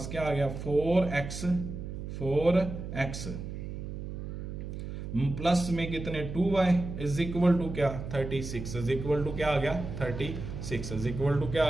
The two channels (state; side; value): noise; right; hum, 7 dB below the sound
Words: क्या आ गया 4x प्लस में कितने 2y इज इक्वल टू क्या 36 इज इक्वल टू क्या आ गया 36 इज इक्वल टू क्या